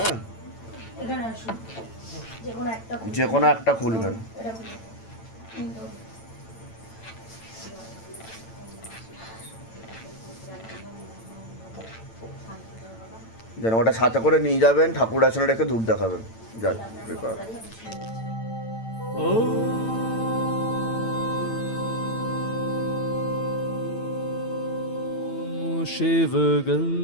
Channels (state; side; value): late; right; 8.9 ms